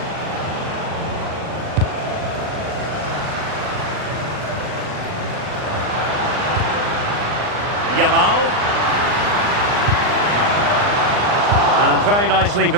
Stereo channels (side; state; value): left; late; 39 ms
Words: Yamal. And very nicely